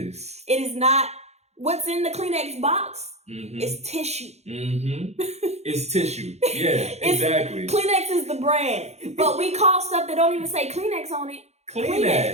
It is not, what's in the Kleenex box is tissue. It's tissue. Yeah, exactly. Kleenex is the brand. But we call stuff that don't even say Kleenex on it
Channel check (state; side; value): late; left; 0.31 ms